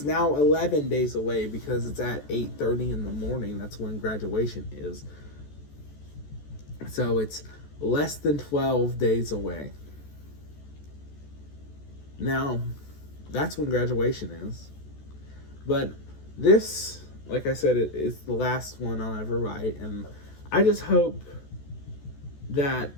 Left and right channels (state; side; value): late; right; 14 ms